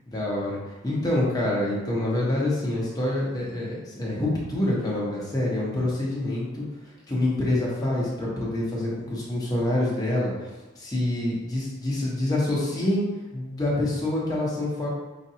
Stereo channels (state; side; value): normal; both; correlation 0.73